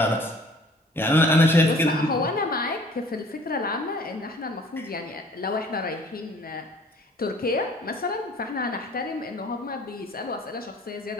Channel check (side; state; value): both; normal; correlation 0.53